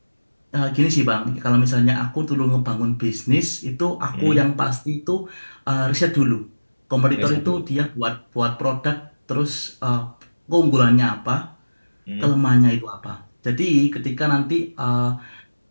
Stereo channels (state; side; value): inverted; both; correlation -1.00